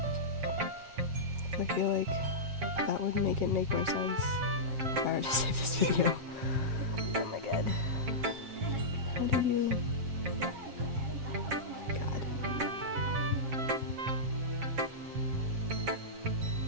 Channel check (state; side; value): late; left; 7.4 ms